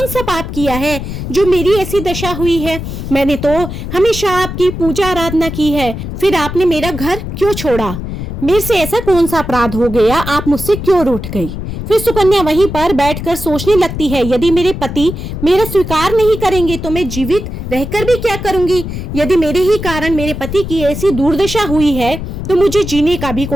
सा पाप किया है जो मेरी ऐसी दशा हुई है। मैंने तो हमेशा आपकी पूजा आराधना की है, फिर आपने मेरा घर क्यों छोड़ा? मेरे से ऐसा कौन सा अपराध हो गया, आप मुझसे क्यों रूठ गई? फिर सुकन्या वहीं पर बैठकर सोचने लगती है, यदि मेरे पति मेरा स्वीकार नहीं करेंगे तो मैं जीवित रहकर भी क्या करूंगी? यदि मेरे ही कारण मेरे पति की ऐसी दुर्दशा हुई है तो मुझे जीने का भी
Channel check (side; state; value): left; noise; rumble, 7 dB below the sound